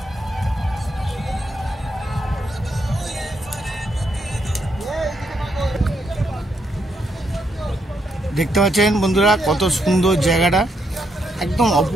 দেখতে পাচ্ছেন বন্ধুরা কত সুন্দর জায়গাটা, একদম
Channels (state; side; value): normal; both; correlation 0.78